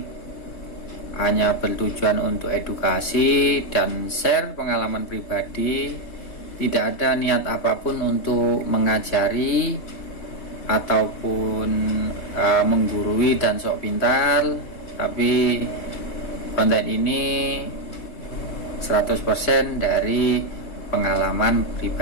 hanya bertujuan untuk edukasi dan share pengalaman pribadi. Tidak ada niat apapun untuk mengajari ataupun menggurui dan sok pintar, tapi konten ini 100% dari pengalaman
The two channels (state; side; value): late; right; 3.1 ms